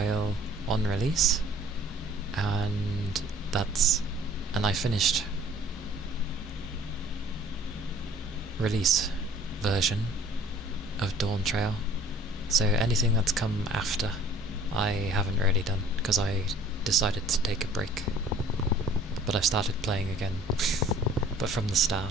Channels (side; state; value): both; normal; correlation 0.53